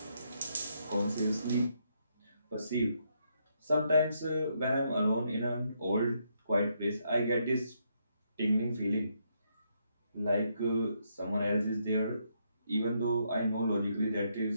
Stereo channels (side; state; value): both; inverted; correlation -0.77